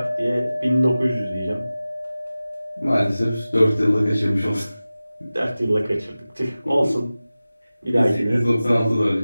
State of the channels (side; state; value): both; inverted; correlation -0.96